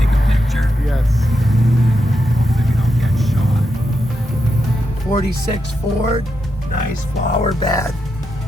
Yes. 46 Ford, nice flower bed.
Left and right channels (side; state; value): both; normal; correlation 0.85